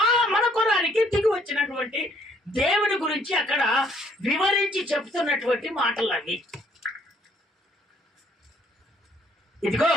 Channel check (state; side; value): normal; both; correlation 0.64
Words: మన కొరానికి దిగి వచ్చినటువంటి దేవుడి గురించి అక్కడ వివరించి చెప్తున్నటువంటి మాటలు అవి. ఇదిగో